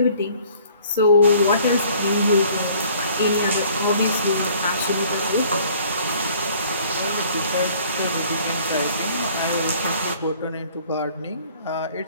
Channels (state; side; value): inverted; both; correlation -0.55